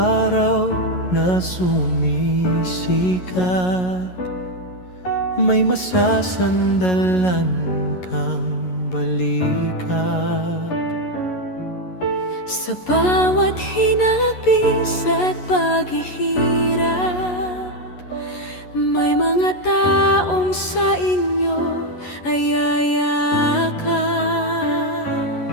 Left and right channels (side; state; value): right; late; 11 ms